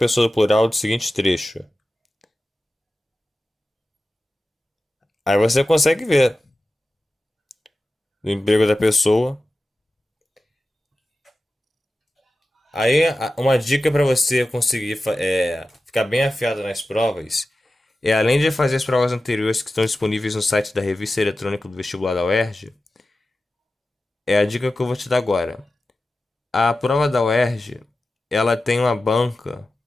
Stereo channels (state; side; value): normal; both; correlation 0.94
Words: do plural do seguinte trecho. Aí você consegue ver o emprego da pessoa. Aí uma dica para você conseguir ficar bem afiado nas provas é, além de fazer as provas anteriores que estão disponíveis no site da revista eletrônica do vestibular da UERJ, é a dica que eu vou te dar agora. A prova da UERJ, ela tem uma banca